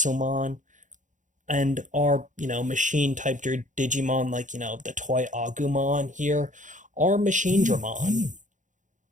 and our, machine type Digimon, like, the Toy Agumon here, are Machine Dramon.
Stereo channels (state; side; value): late; left; 0.36 ms